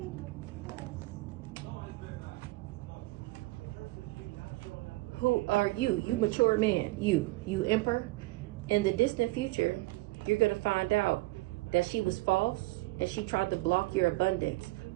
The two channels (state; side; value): quieter; left; 20.9 dB